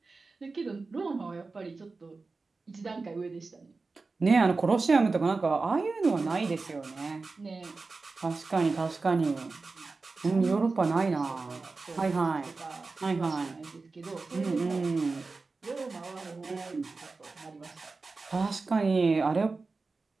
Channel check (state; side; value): quieter; left; 3.9 dB